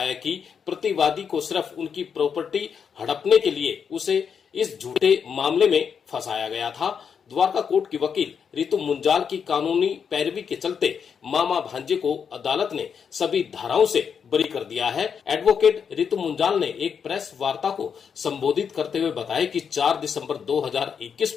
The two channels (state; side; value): quieter; right; 6.9 dB